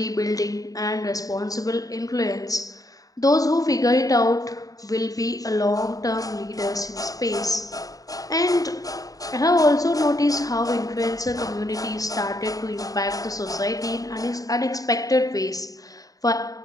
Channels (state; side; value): late; right; 0.17 ms